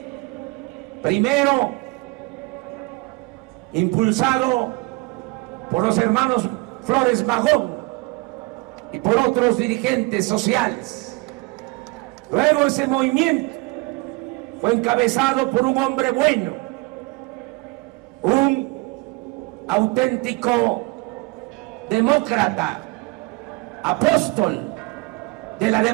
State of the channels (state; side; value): quieter; left; 25.3 dB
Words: primero impulsado por los hermanos Flores Magón y por otros dirigentes sociales. Luego ese movimiento fue encabezado por un hombre bueno, un auténtico demócrata, apóstol de la